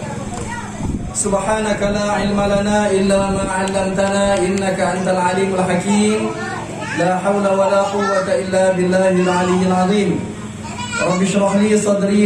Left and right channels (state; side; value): identical; both; correlation 1.00